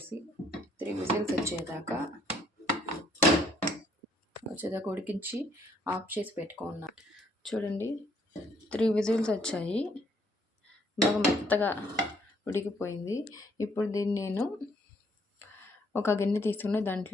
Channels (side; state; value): both; normal; correlation 0.67